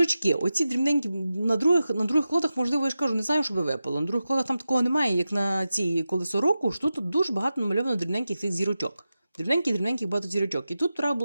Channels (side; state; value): both; inverted; correlation -0.92